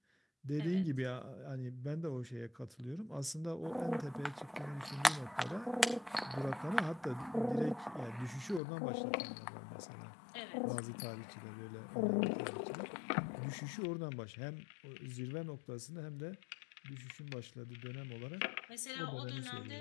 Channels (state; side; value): drops out; right; at 8.6 s